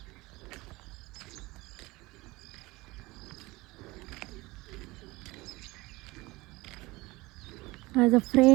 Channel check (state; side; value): quieter; left; 21.5 dB